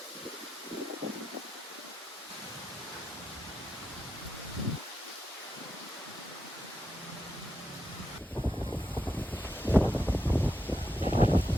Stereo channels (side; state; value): both; normal; correlation 0.85